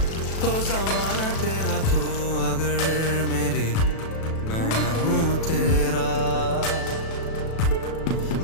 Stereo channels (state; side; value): late; right; 37 ms